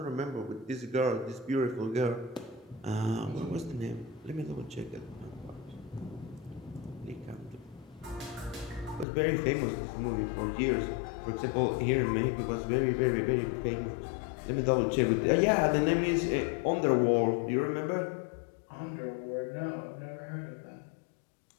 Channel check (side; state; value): right; drops out; at 9.1 s